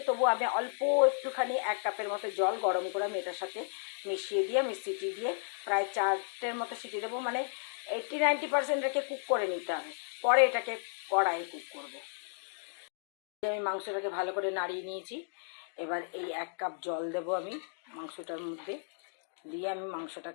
তবু আমি অল্প একটুখানি 1 কাপের মতো জল গরম করে আমি এটার সাথে মিশিয়ে দিয়ে আমি সিটি দিয়ে প্রায় 4টের মতো সিটি দেবো, মানে 80-90% রেখে কুক করে নিতে হবে, পরে এটাকে কড়াইয়ে কুক করবো। আমি মাংসটাকে ভালো করে নাড়িয়ে নিয়েছি। এবার এই 1 কাপ জল দেবো আমি মাংসটার মধ্যে, দিয়ে আমি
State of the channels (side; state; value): right; silent; digital silence